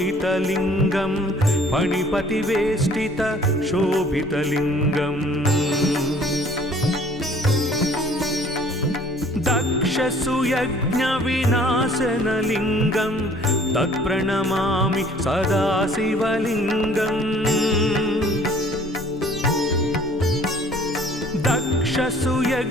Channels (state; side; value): normal; both; correlation 0.54